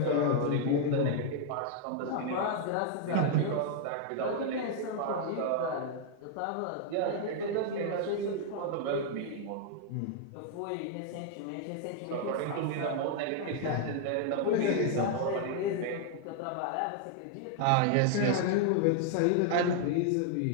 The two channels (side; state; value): both; different; correlation 0.00